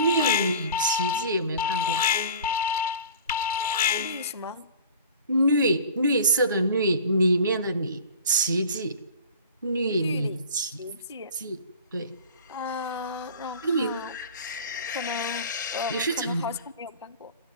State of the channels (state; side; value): inverted; both; correlation -0.43